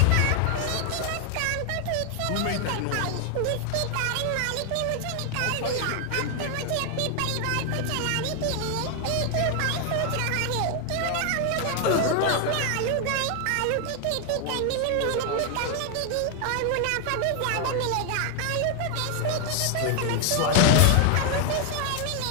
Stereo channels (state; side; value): different; both; correlation 0.01